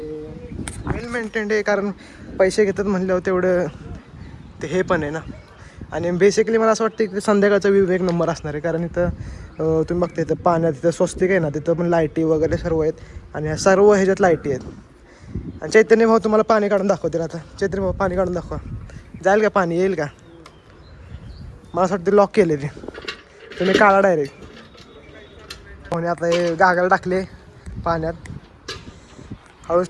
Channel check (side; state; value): both; identical; correlation 1.00